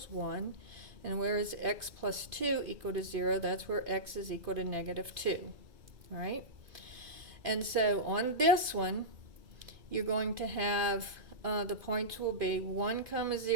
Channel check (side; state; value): left; late; 2.5 ms